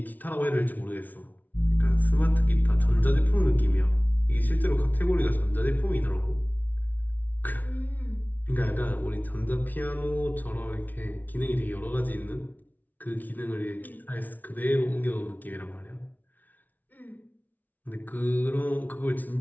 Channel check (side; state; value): right; late; 0.079 ms